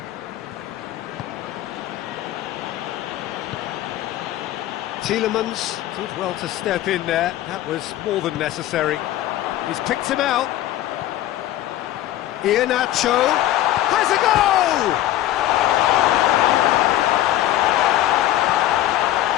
Tielemans did well to step in there. That was more than necessary. He's picked him out. Iheanacho has a goal!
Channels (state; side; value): quieter; right; 13.9 dB